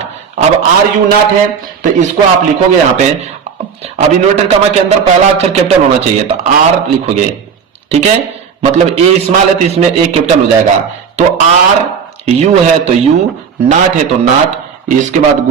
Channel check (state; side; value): quieter; left; 6.7 dB